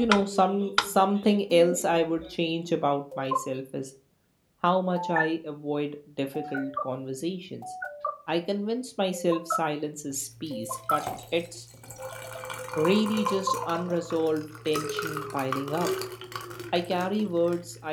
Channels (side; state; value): both; identical; correlation 1.00